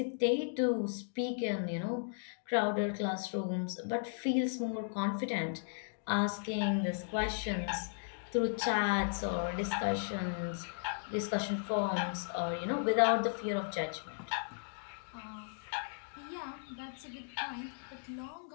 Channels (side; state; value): right; silent; digital silence